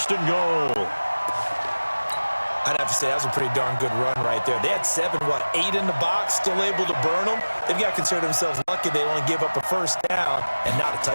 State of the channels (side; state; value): both; inverted; correlation -1.00